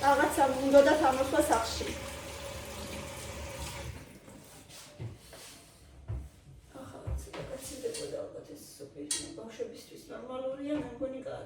რაღაცა უნდა თამაშვა სახში. ახლა ცოტა გაცილდებოდა ალბათ ეს სუპი, ბავშვებისთვის ნორმალურია, მე მგონი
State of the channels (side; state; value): both; identical; correlation 1.00